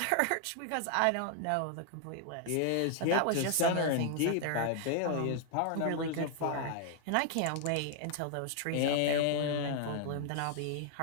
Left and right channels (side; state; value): both; different; correlation 0.00